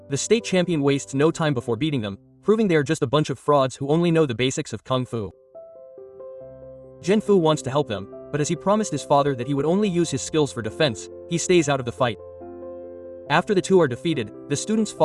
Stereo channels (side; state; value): both; identical; correlation 1.00